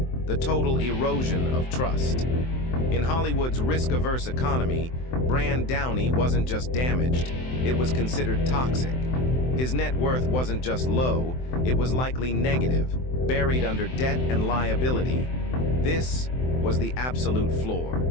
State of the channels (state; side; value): late; right; 23 ms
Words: the total erosion of trust. In Hollywood's risk-averse economy, Brand Downey wasn't just damaged, it was considered toxic. His net worth wasn't just low, it was likely negative, buried under debt and liability. This was the absolute floor.